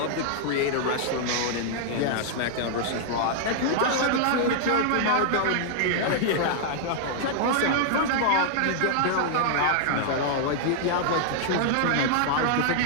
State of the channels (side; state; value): both; different; correlation -0.01